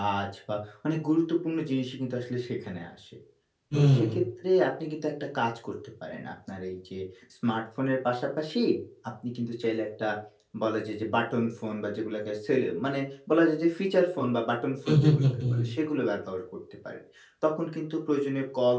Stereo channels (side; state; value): both; identical; correlation 1.00